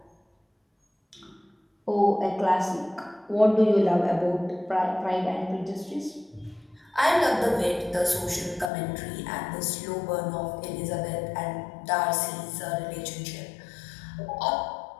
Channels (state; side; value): drops out; right; at 8.7 s